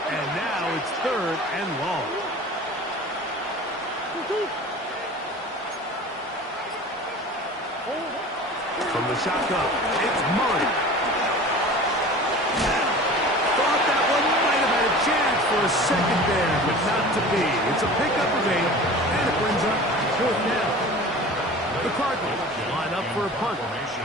and now it's 3rd and long. From the shotgun, it's Murray. Thought that one might have had a chance for a second there, but not to be. It's a pickup of 8, and it brings up 4th down. The Cardinals line up for a punt.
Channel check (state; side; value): normal; both; correlation 0.39